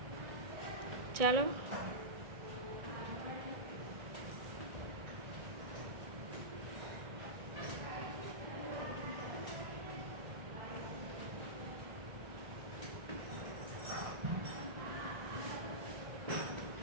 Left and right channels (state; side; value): late; left; 1.7 ms